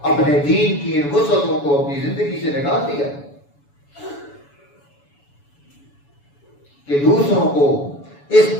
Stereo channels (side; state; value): right; late; 7.0 ms